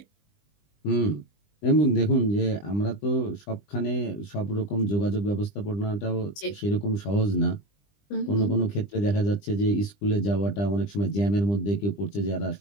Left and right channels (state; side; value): late; right; 20 ms